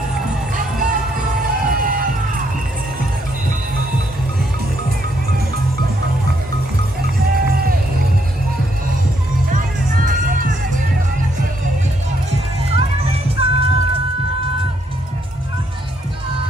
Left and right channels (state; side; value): normal; both; correlation 0.73